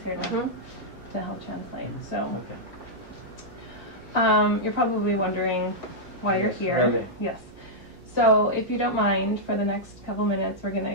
here Mhm. to help translate. So Okay. you're probably wondering why you're Yes, here. really. Yes. So if you don't mind, for the next couple minutes, we're going to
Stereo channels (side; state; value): both; normal; correlation -0.08